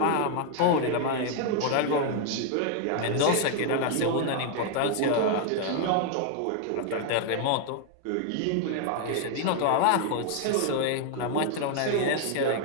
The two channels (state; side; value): different; both; correlation 0.00